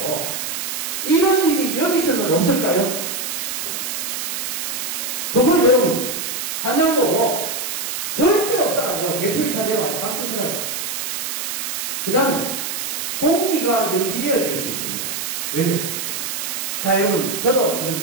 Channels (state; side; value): noise; right; hiss, 3 dB below the sound